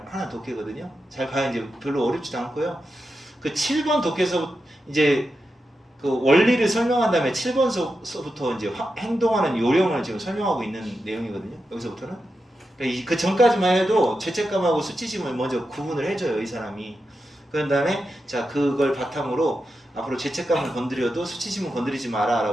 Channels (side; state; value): both; normal; correlation 0.89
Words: 하나 독해거든요. 잘 봐야 이제 별로 어렵지도 않고요. 그 7번 독해서 이제 그 원리를 설명한 다음에 7번서부터 이제 행동하는 요령을 지금 설명하고 있는 내용이거든요. 여기서부터는. 그러니까 그 전까지만 해도 죄책감하고 수치심을 먼저 구분을 해줘요, 이 사람이. 그런 다음에 자 그걸 바탕으로 앞으로 죄책감을 건드려도 수치심을 건드리지